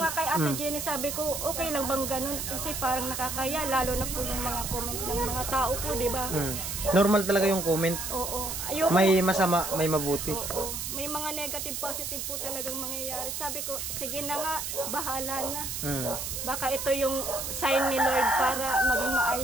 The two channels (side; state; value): right; noise; hiss, 4 dB below the sound